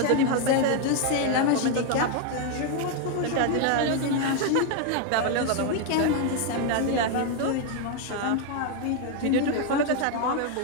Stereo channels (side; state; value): both; different; correlation 0.01